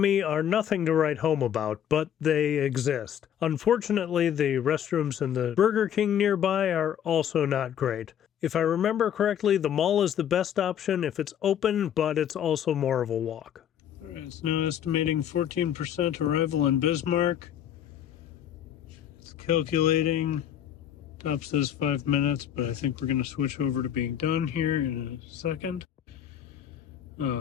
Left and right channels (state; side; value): quieter; right; 9.7 dB